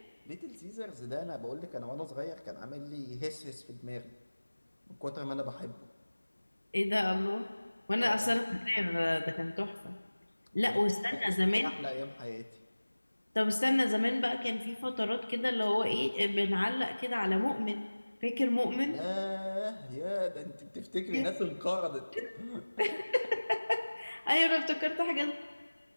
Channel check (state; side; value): inverted; both; correlation -1.00